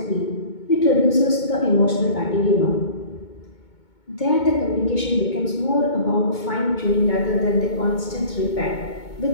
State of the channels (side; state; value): right; late; 2.2 ms